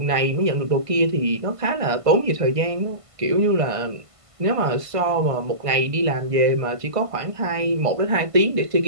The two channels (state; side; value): late; left; 1.5 ms